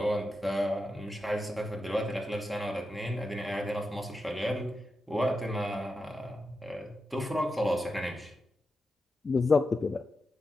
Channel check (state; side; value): normal; both; correlation 0.89